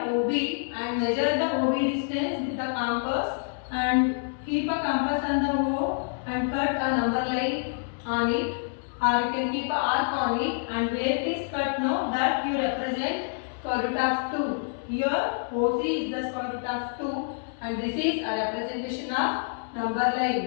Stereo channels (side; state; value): right; silent; 60 dB below the other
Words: OB and measure the OB distance with the compass, and keep a compass on the O and cut a number line on it, or you can keep a arc on it, and where it is cut now, that you represent square root of 2. Here OC is the square root of 2, and this is a representation of number line,